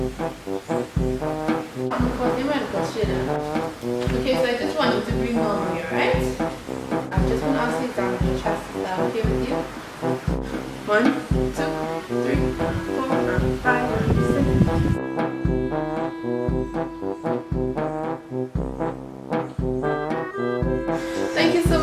I'm currently a medical student. Okay, so I just want you to breathe normally, alright? I'm just going to ask you to examine your chest. Is that okay with you? 1, 2, 3, 4, and 5, and 6. Thank you so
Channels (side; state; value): both; identical; correlation 1.00